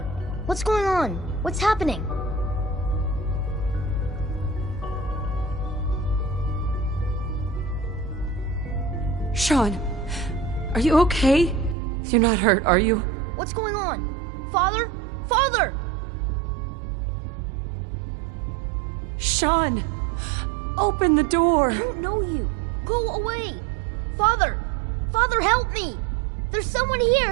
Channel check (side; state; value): left; drops out; at 11.8 s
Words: what's going on? What's happening? Sean, are you okay? You're not hurt, are you? What's going on? Father? Father! Sean, open the door. I don't know you. Go away. Father! Father, help me! There's someone